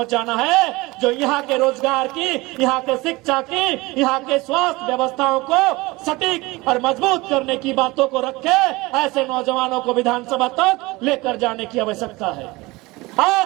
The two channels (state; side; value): quieter; left; 22.2 dB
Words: है, जो यहाँ के रोजगार की, यहाँ के शिक्षा की, यहाँ के स्वास्थ्य व्यवस्थाओं को सटीक और मजबूत करने की बातों को रखे। ऐसे नौजवानों को विधानसभा तक लेकर जाने की आवश्यकता है।